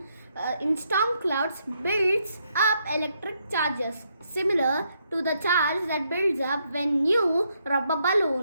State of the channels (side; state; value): both; inverted; correlation -0.76